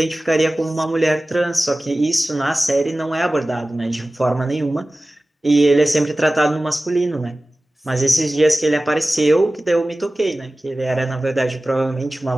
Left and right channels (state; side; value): normal; both; correlation 0.97